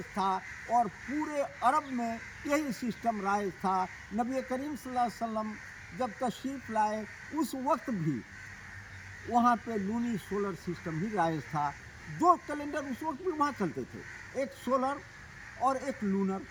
था और पूरे अरब में यही सिस्टम राइज था। नबी करीम सल्लल्लाहु अलैहि वसल्लम जब तशरीफ़ लाए, उस वक्त भी वहाँ पे लूनी सोलर सिस्टम ही राइज था। 2 कैलेंडर उस वक्त भी वहाँ चलते थे, एक सोलर और एक लूनर,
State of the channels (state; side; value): identical; both; correlation 1.00